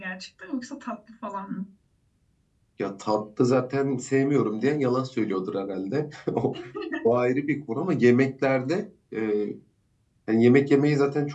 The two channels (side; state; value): both; identical; correlation 1.00